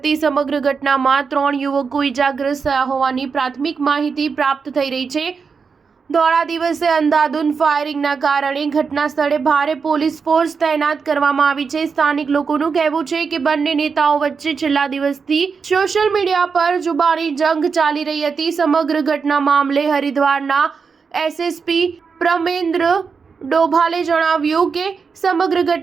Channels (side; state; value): left; quieter; 5.5 dB